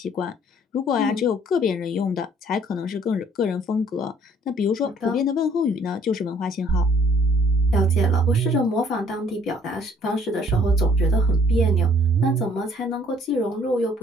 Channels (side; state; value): both; normal; correlation 0.60